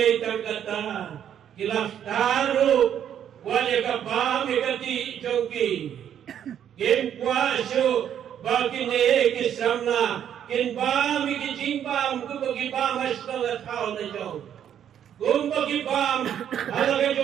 tangkata kilaf taru wale kabam ikati jogi. Kim kuasu bagi ne kisamna kin bam ikijimbam kubagi bam asnga thau na jong. Kumbagi bam alaga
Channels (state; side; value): quieter; left; 9.6 dB